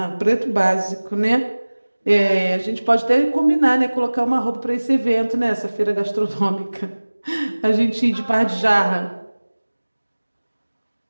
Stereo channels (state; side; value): inverted; both; correlation -1.00